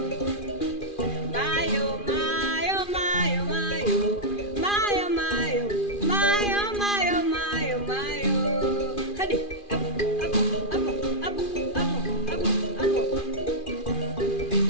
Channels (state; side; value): late; right; 2.4 ms